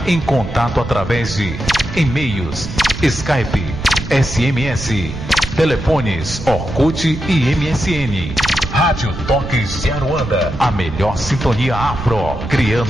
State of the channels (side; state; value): right; noise; rumble, 8 dB below the sound